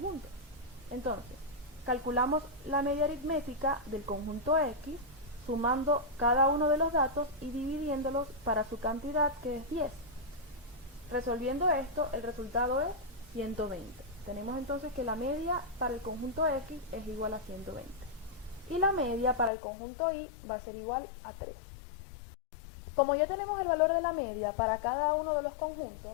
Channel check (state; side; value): drops out; right; at 19.5 s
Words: Entonces, calculamos la media aritmética del conjunto X sumando cada uno de los datos y dividiéndolos para su cantidad, que es 10. Resolviendo esto, el resultado es 120. Tenemos entonces que la media para el conjunto X es igual a 120. Y la media para el conjunto Y va a ser igual a 3. Como ya tenemos el valor de la media para cada uno de los